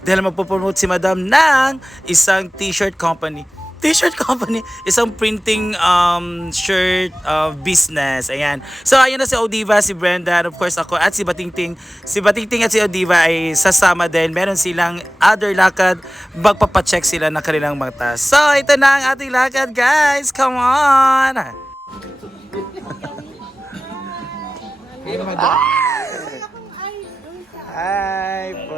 dahil magpo-promote si Madam ng isang t-shirt company. T-shirt company, isang printing shirt business. Ayan. So, ayun na si Odiva, si Brenda, and of course ako at si Batingting. Si Batingting at si Odiva ay sasama din. Meron silang other lakad. Magpapacheck sila ng kanilang mata. So, ito na ang ating lakad, guys. Come on! Hi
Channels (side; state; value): both; normal; correlation 0.96